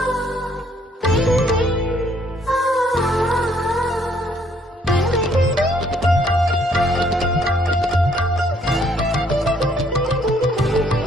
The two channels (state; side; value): normal; both; correlation 0.66